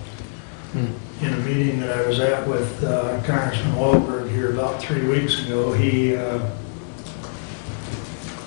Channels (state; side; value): silent; right; digital silence